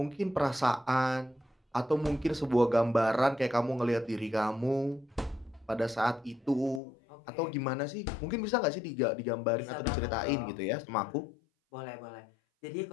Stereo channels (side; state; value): right; drops out; at 6.8 s